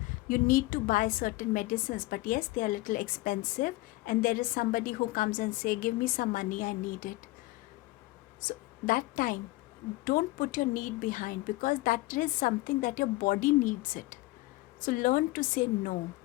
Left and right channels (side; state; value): right; quieter; 20.2 dB